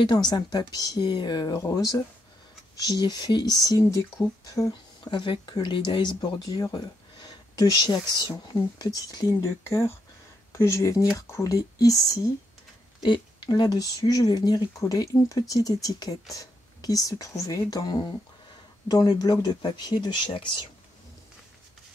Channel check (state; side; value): normal; both; correlation 0.79